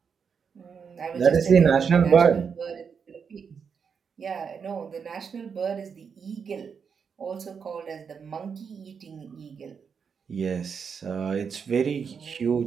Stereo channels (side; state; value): left; quieter; 6.4 dB